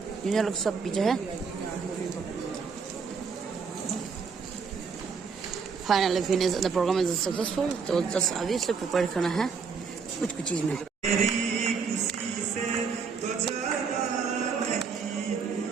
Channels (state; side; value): quieter; left; 5.6 dB